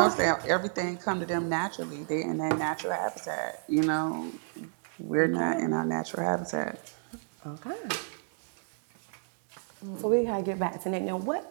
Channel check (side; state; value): left; silent; 58 dB below the other